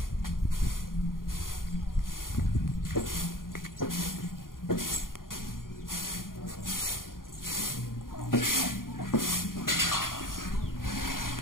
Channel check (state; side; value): late; right; 0.91 ms